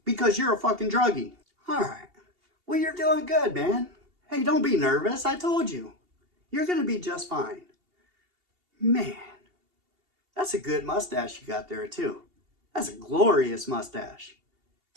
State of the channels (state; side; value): late; left; 2.8 ms